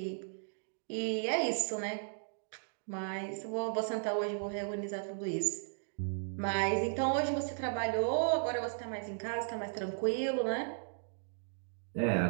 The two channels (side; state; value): left; silent; digital silence